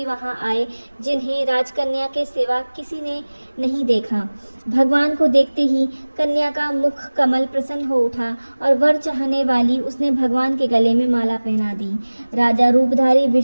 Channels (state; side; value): inverted; both; correlation -1.00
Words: वहां आए, जिन्हें राजकन्या के सिवा किसी ने नहीं देखा। भगवान को देखते ही कन्या का मुख कमल प्रसन्न हो उठा और वर चाहने वाली उसने भगवान के गले में माला पहना दी। राजा रूपधारी